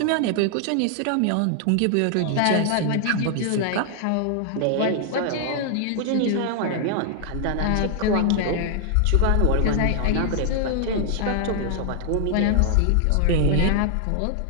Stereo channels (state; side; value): different; both; correlation 0.00